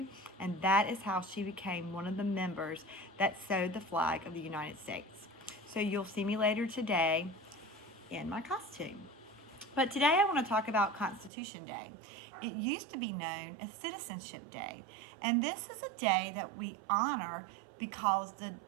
And that is how she became one of the members that sewed the flag of the United States. So you'll see me later today in my costume. But today I want to talk about Constitution Day. It used to be known as Citizenship Day. And this is a day that we honor because the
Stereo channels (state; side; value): drops out; left; at 11.3 s